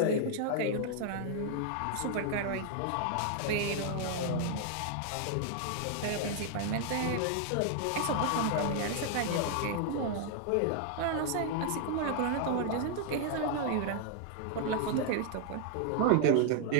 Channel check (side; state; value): both; different; correlation 0.00